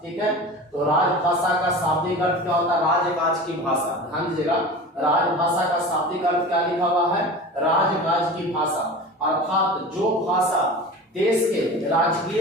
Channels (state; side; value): normal; both; correlation 0.34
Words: ठीक है, तो राजभाषा का शाब्दिक अर्थ क्या होता है? राजकाज की भाषा। ध्यान दीजिएगा, राजभाषा का शाब्दिक अर्थ क्या लिखा हुआ है? राजकाज की भाषा, अर्थात जो भाषा देश के